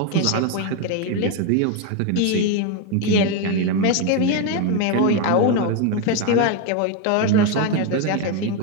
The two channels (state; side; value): different; both; correlation 0.02